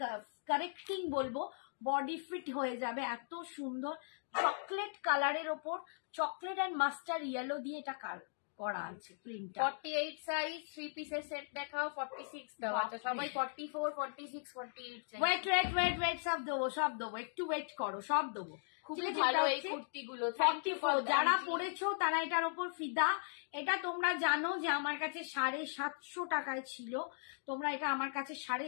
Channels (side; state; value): right; silent; digital silence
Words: কারেক্টিং বলবো, বডি ফিট হয়ে যাবে। এত সুন্দর চকলেট কালারের ওপর চকলেট অ্যান্ড মাস্টার্ড ইয়েলো দিয়ে এটা করা আছে প্রিন্টটা। 48 সাইজ 3 পিসের সেট দেখাও। 46 দাও। আচ্ছা, সবাই 44 46 48 চাই। ওয়েট সব দেবো, একটু ওয়েট করো, সব দেবো। খুব ভালো এই কুর্তিগুলো। 44 যারা পরেছো তারা এটার ওপর ফিদা। এটা তোমরা জানো যে আমার কাছে 750 টাকায় ছিল, তোমরা এটা আমার কাছে